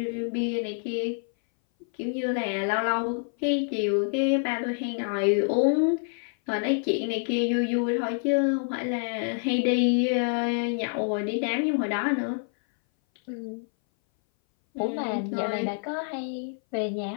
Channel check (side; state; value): right; silent; 58 dB below the other